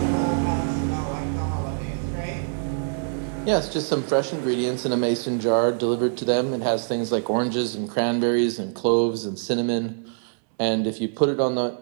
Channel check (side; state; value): left; silent; 62 dB below the other